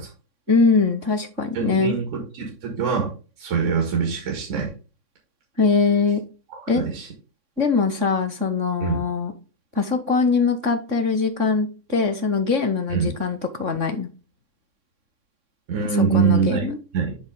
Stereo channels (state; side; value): late; left; 3.6 ms